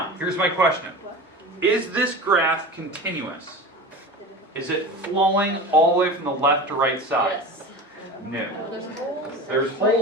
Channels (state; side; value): normal; both; correlation 0.32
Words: here's my question. Is this graph continuous? Is it flowing all the way from the left to right side? Yes. No. There's holes. There's